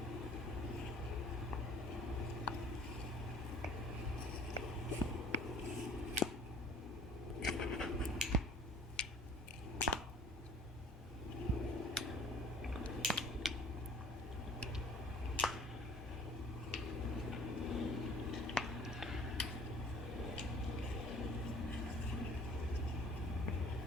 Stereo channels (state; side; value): normal; both; correlation 0.51